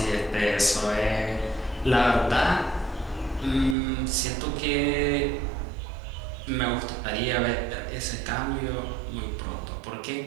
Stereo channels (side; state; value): left; drops out; at 3.8 s